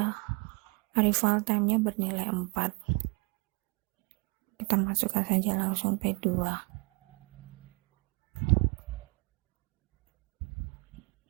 arrival time-nya bernilai 4. Kita masukkan saja langsung P2.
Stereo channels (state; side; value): quieter; left; 28.9 dB